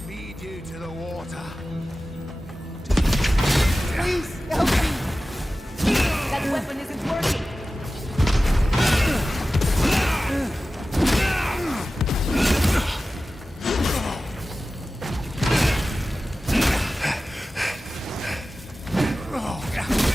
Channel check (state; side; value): normal; both; correlation 0.95